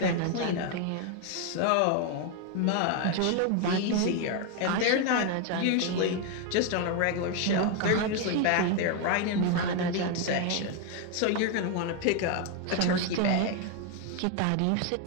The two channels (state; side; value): different; both; correlation 0.01